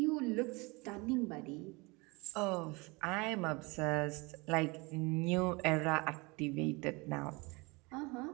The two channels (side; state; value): left; quieter; 26.4 dB